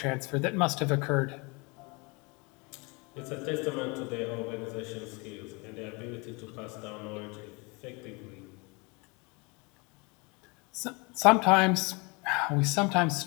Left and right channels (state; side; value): quieter; right; 28.9 dB